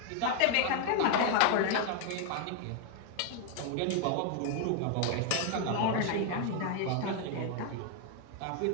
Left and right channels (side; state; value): both; different; correlation 0.00